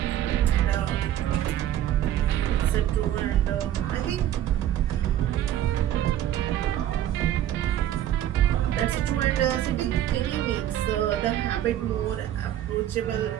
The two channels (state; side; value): quieter; left; 11.9 dB